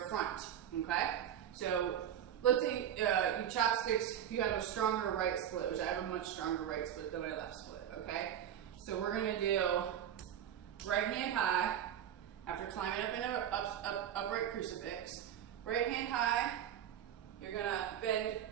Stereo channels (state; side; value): quieter; left; 10.1 dB